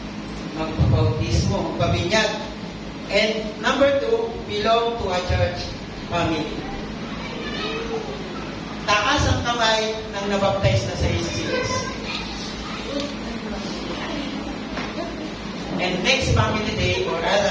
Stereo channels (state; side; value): identical; both; correlation 1.00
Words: Magpabautismo, magpabinyag. And number 2, belong to a church family. Taas ang kamay ng nabaptize na sa Jesus. And next family day or